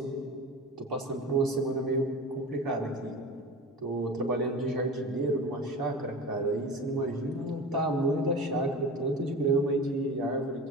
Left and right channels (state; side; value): normal; both; correlation 0.33